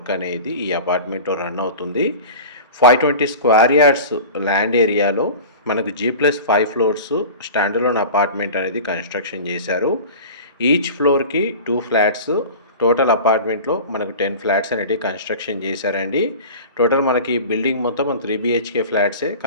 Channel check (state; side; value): inverted; both; correlation -0.36